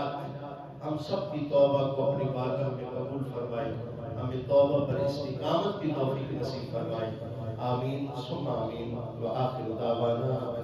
ہم سب کی توبہ کو اپنی بارگاہ میں قبول فرمائے، ہمیں توبہ پر استقامت کی توفیق نصیب فرمائے۔ آمین ثم آمین، وآخر دعوانا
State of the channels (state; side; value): identical; both; correlation 1.00